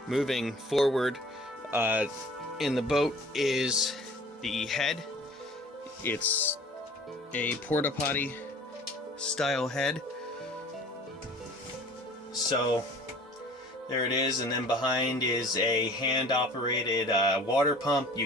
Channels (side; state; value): both; normal; correlation 0.47